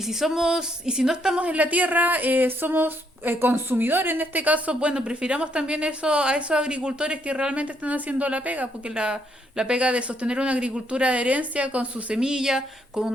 no estamos en la tierra, somos consumidores en este caso. Bueno, prefiramos también eso a esos agricultores que realmente están haciendo la pega, porque la pega de sostener una agricultura de herencia con su semilla, con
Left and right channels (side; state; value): both; normal; correlation 0.72